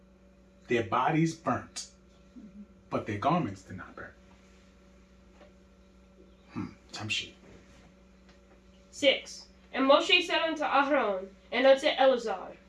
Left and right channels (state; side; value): identical; both; correlation 1.00